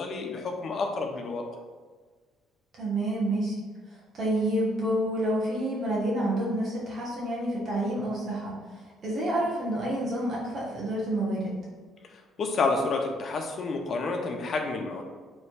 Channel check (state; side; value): normal; both; correlation 0.67